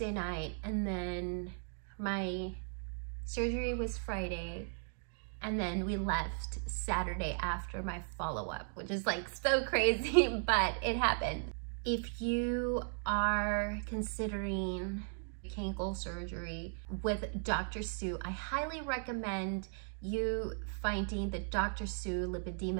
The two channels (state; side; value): silent; left; digital silence